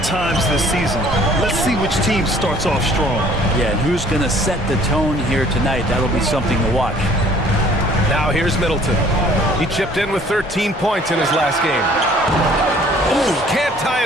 this season. Let's see which team starts off strong. Yeah, and who's going to set the tone here tonight? That'll be something to watch. Now here's Middleton. He chipped in with 13 points in his last game. Ooh, can't tie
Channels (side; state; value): both; normal; correlation 0.55